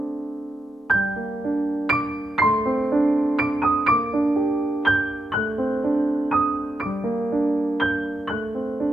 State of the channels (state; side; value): normal; both; correlation 0.86